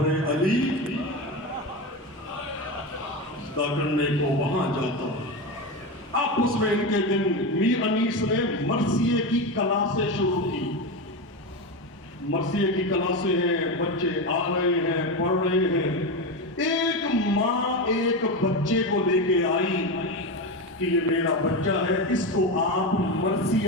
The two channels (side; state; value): both; normal; correlation 0.17